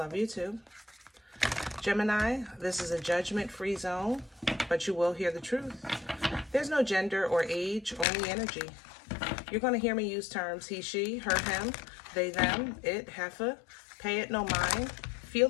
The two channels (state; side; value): drops out; right; at 8.1 s